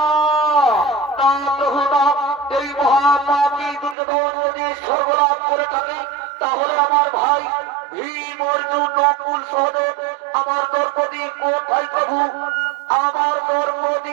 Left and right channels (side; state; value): left; drops out; at 4.0 s